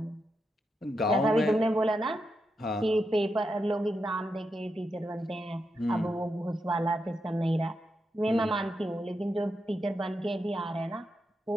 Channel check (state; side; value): normal; both; correlation 0.85